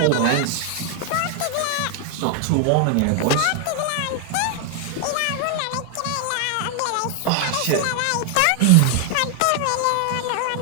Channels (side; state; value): both; different; correlation 0.00